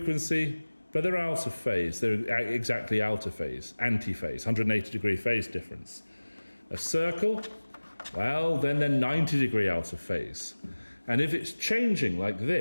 but they're out of phase. They're exactly out of phase, anti-phase, 180-degree phase difference. A circle, well, then they're 90-degree out of phase. And if it's changing like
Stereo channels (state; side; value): inverted; both; correlation -1.00